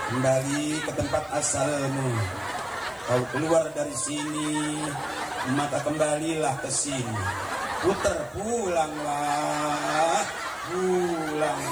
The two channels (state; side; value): noise; right; hiss, 28 dB below the sound